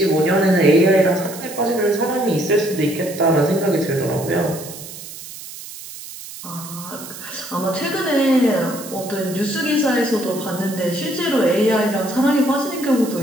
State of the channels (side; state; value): right; noise; hiss, 13 dB below the sound